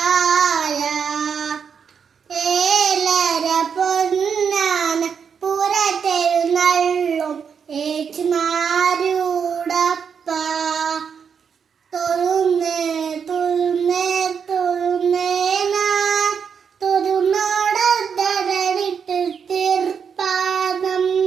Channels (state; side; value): quieter; left; 6.8 dB